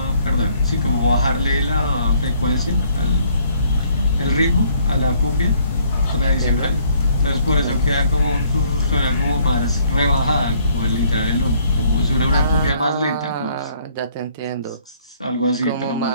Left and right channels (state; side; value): inverted; both; correlation -0.63